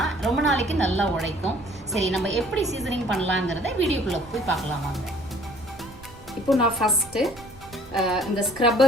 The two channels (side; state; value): right; noise; rumble, 21 dB below the sound